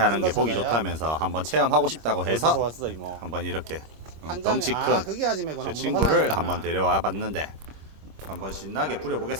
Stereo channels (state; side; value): late; left; 26 ms